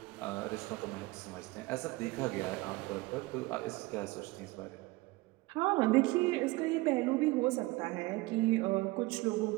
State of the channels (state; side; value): quieter; left; 21.8 dB